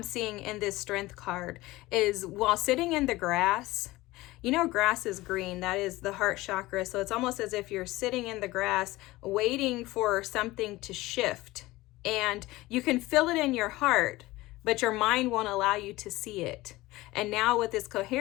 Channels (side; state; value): right; quieter; 19.0 dB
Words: seeing in this strength card is while sitting in the grass, you know, grass is green. That is the heart chakra. So it's almost as if you're sitting in the grass waiting for something to shift. And you can feel it in your heart, but your mind won't allow you to see it. And now with this